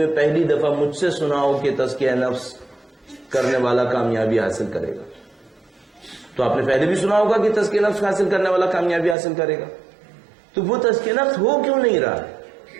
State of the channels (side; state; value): left; drops out; at 9.2 s